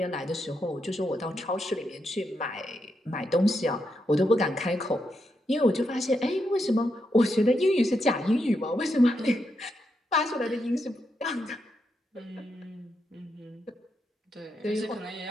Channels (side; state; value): both; normal; correlation 0.83